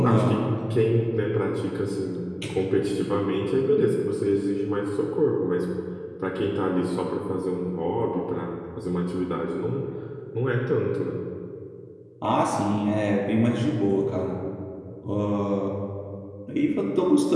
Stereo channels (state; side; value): identical; both; correlation 1.00